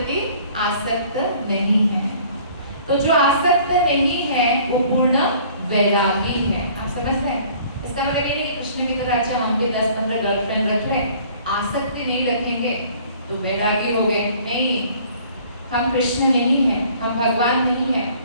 आसक्त नहीं है। तो जो आसक्त नहीं है वो पूर्ण वैरागी है। आप समझ रहे हैं? इसका मतलब ये नहीं कृष्ण की तरह अच्छा हम भी 10-15 गर्लफ्रेंड रख लें, आसक्ति नहीं रखेंगे तो वैरागी हो गए। नहीं, हम कृष्ण नहीं हैं, हम भगवान नहीं हैं,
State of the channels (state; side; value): inverted; both; correlation -0.53